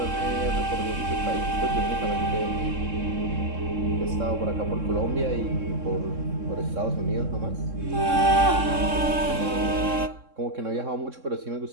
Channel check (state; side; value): late; left; 3.7 ms